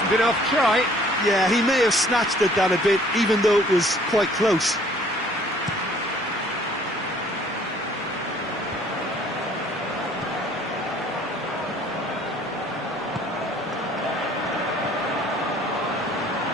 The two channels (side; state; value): both; normal; correlation 0.57